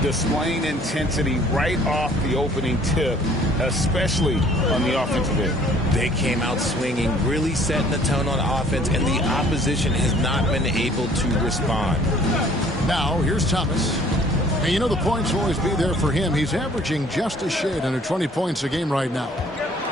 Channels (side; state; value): both; normal; correlation 0.56